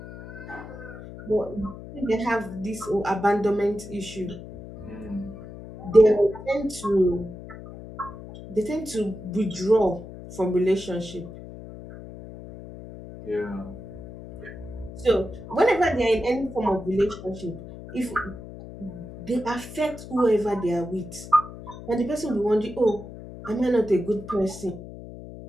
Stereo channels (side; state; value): left; noise; hum, 13 dB below the sound